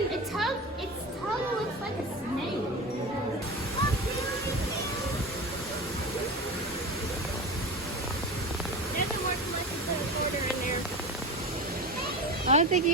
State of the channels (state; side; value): normal; both; correlation 0.28